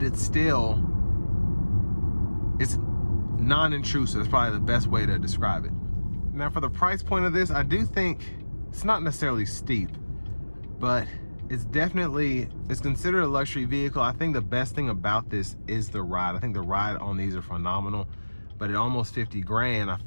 it's non-intrusive. It's probably the best way to describe it. Now, for the price point of this, I do think it's not necessarily steep, but it's considered a luxury vehicle. I think the best thing about this is the ride. I think the ride on these are phenomenal, but at almost 50 grand,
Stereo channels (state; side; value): inverted; both; correlation -1.00